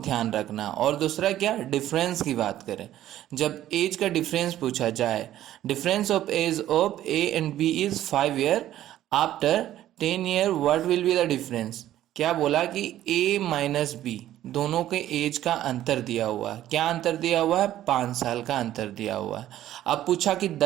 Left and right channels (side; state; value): left; quieter; 12.9 dB